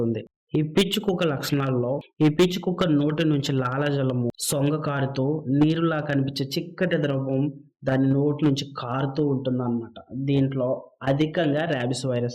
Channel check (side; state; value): both; identical; correlation 1.00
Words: ఈ పిచ్చి కుక్క లక్షణాల్లో ఈ పిచ్చి కుక్క నోటి నుంచి లాలాజలము సొంగ కారుతూ నీరులా కనిపించే చిక్కటి ద్రవం దాని నోటి నుంచి కారుతూ ఉంటుంది అన్నమాట. దీంట్లో అధికంగా ర్యాబిస్